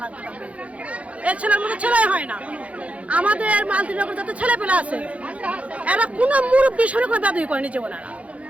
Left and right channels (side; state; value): left; late; 0.065 ms